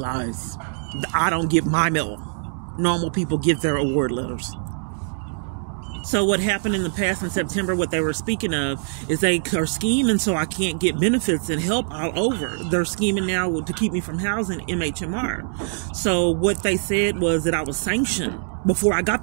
I don't get my mill. Normal people get their award letters. So what happened in the past in September, what they were speaking of, is they are scheming so I can't get benefits and help all over. They're scheming now to keep me from housing MHMR. So what they said was that I was sanctioned before I got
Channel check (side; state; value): left; silent; digital silence